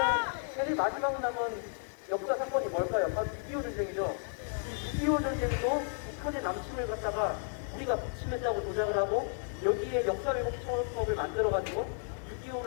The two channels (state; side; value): silent; right; 56 dB below the other